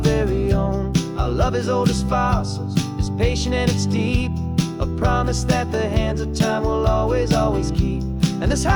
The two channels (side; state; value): both; identical; correlation 1.00